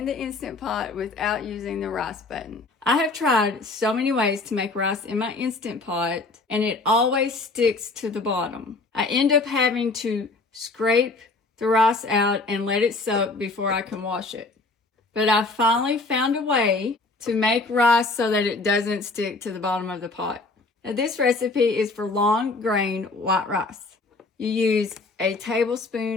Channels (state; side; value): quieter; right; 3.5 dB